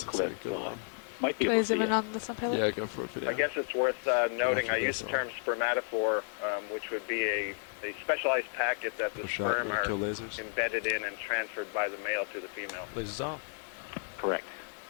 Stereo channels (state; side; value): silent; right; digital silence